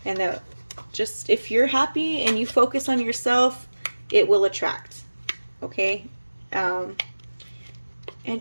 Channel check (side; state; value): both; inverted; correlation -1.00